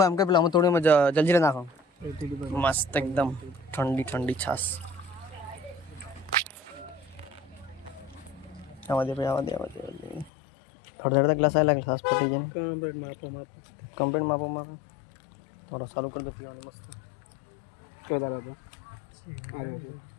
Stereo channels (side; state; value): right; drops out; at 10.3 s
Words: એમ કે પેલા અમે તોડીને જલજીરા નાખો મસ્ત એકદમ ઠંડી ઠંડી છાસ આવા દે થોડા ગ્લાસ આવી લાગે છાસ પટી જાય કમ્પ્લેટ માપો થોડો ચાલુ કરી દો પીવાની મસ્ત